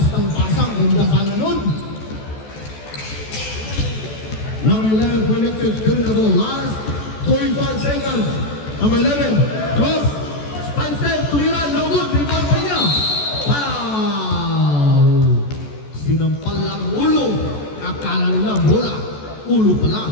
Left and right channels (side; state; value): right; late; 14 ms